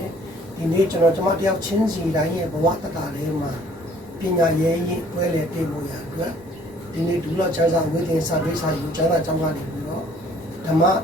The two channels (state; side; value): normal; both; correlation 0.57